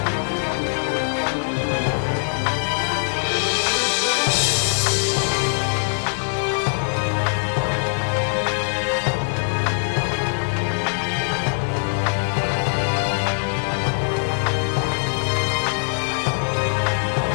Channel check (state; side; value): silent; right; digital silence